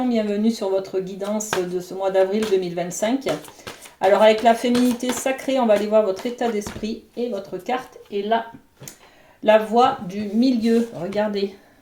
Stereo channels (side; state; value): both; identical; correlation 1.00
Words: bienvenue sur votre guidance de ce mois d'avril 2025. Alors avec la féminité sacrée, on va aller voir votre état d'esprit et votre carte est là. La voie du milieu, regardez,